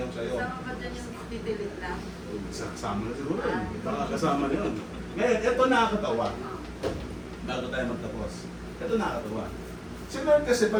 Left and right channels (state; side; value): identical; both; correlation 1.00